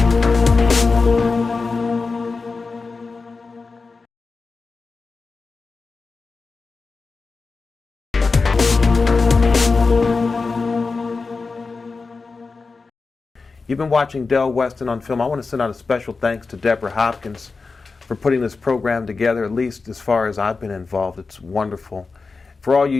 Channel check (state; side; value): quieter; right; 4.3 dB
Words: You've been watching Del Weston on Film. I want to send out a special thanks to Deborah Hopkins for putting this program together, at least as far as I've been involved. It's wonderful. For all you